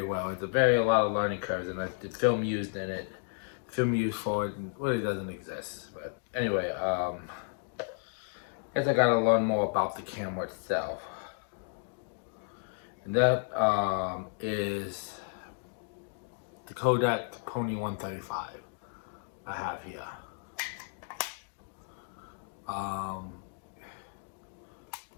well. It's a lot of learning curves, and the film used in it, film used for it, really doesn't exist. But anyway, I guess I gotta learn more about the camera itself, and that is the Kodak Pony 135 I have here.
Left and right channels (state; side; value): silent; right; 56 dB below the other